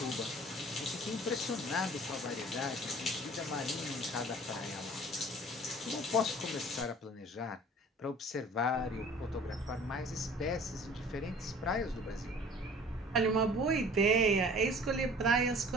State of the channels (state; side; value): normal; both; correlation 0.47